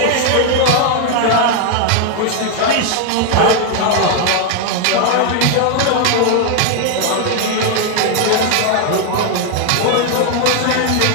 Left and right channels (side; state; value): both; different; correlation 0.00